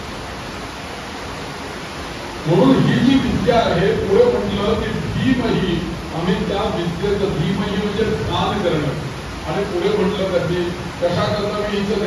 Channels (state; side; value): identical; both; correlation 1.00